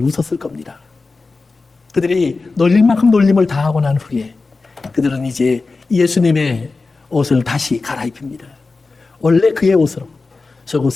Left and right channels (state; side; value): quieter; right; 3.9 dB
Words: 웃었을 겁니다. 그들이 놀릴 만큼 놀림을 당하고 난 후에 그들은 이제 예수님의 옷을 다시 갈아입힙니다. 원래 그의 옷으로